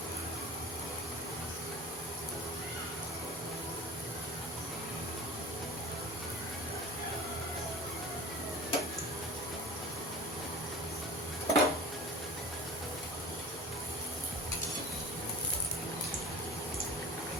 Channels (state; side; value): normal; both; correlation 0.40